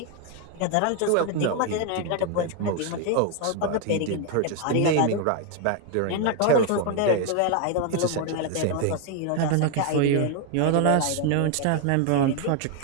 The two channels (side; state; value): both; different; correlation 0.00